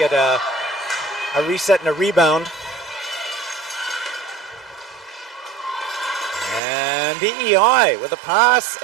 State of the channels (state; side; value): drops out; left; at 6.6 s